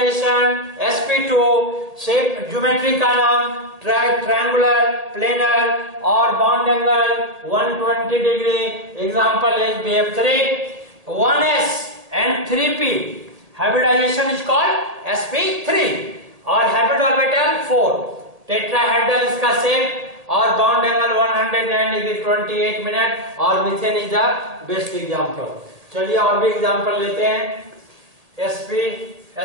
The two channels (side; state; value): left; late; 1.7 ms